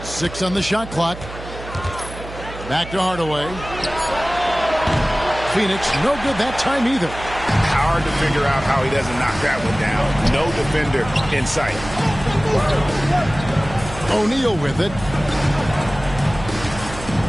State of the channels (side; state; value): right; noise; hum, 12 dB below the sound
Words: 6 on the shot clock. Back to Hardaway. Phoenix, no good that time either. Hard to figure out how he doesn't knock that one down. No defender in sight. O'Neal with it.